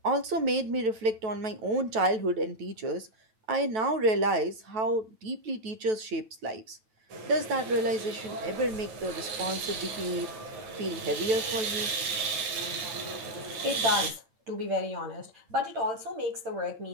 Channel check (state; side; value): late; left; 9.4 ms